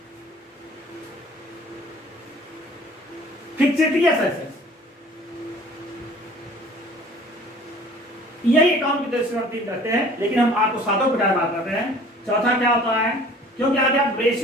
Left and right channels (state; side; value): normal; both; correlation 0.49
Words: फिक्सेटियस एसेट्स। यही अकाउंट की दृष्टि से करते हैं, लेकिन हम आपको 7 प्रकार बात करते हैं। चौथा क्या होता है, क्योंकि आगे आप